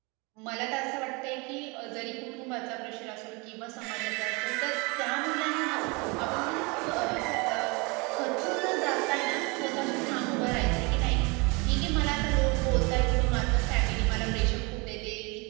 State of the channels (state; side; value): quieter; left; 28.5 dB